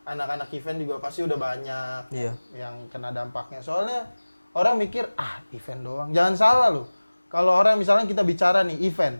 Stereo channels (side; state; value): both; inverted; correlation -1.00